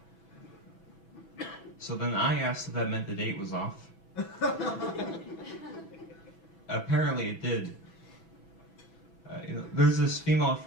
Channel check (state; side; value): late; right; 6.1 ms